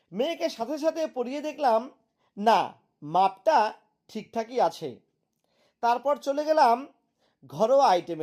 মেয়েকে সাথে সাথে পরিয়ে দেখলাম না, মাপটা ঠিকঠাকই আছে। তারপর চলে গেলাম ঘরোয়া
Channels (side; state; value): both; identical; correlation 1.00